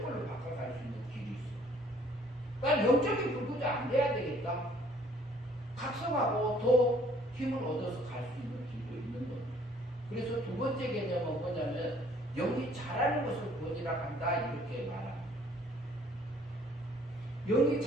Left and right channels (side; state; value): both; normal; correlation 0.59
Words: 걸로 바꿔갈 수 있는 길이 있어요. 난 영적인 불구자 안 돼야 되겠다. 각성하고 더 힘을 얻어서 갈 수 있는 길도 있는 겁니다. 그래서 두 번째 개념은 뭐냐면 영이 자라는 것을 구원이라고 한다 이렇게 말합니다. 영이